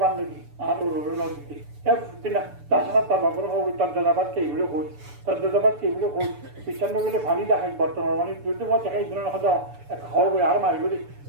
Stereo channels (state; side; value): late; left; 6.9 ms